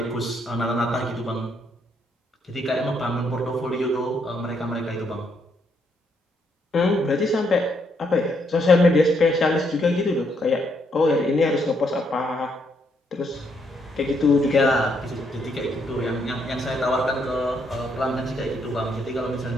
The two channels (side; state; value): both; normal; correlation 0.74